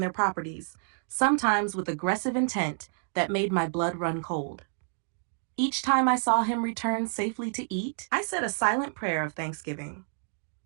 properties, sometimes with aggressive intent that made my blood run cold. Each time I saw him return safely to eat, I said a silent prayer of thanksgiving.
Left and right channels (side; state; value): left; silent; digital silence